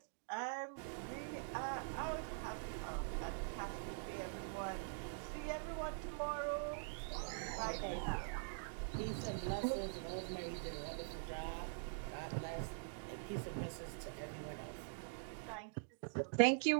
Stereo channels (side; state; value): left; silent; digital silence